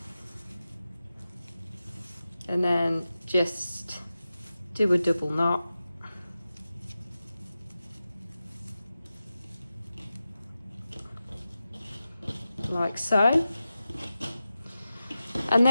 And then just do a double knot. Like so. And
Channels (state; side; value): inverted; both; correlation -0.93